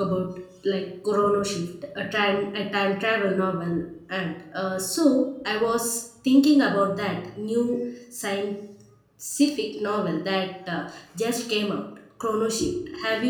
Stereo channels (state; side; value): identical; both; correlation 1.00